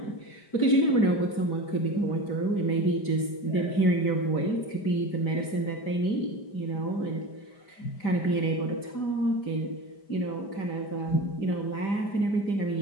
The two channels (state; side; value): late; right; 5.0 ms